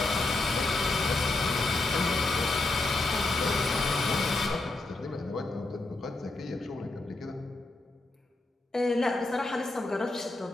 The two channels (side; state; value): right; quieter; 3.0 dB